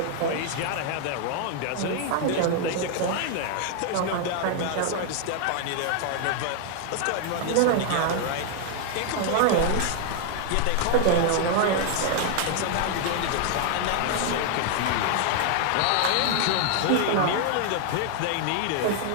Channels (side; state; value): both; different; correlation 0.00